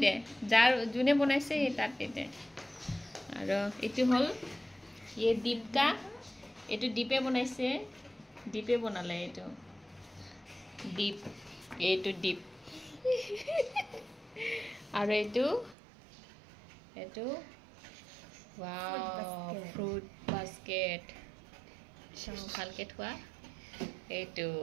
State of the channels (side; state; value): left; drops out; at 15.8 s